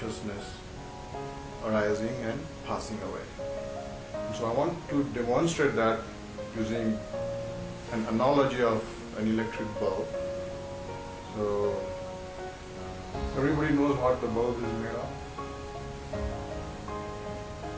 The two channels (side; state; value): both; identical; correlation 1.00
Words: arising and passing away. And so I want to demonstrate that using an analogy of an electric bulb. So everybody knows what the bulb is made of?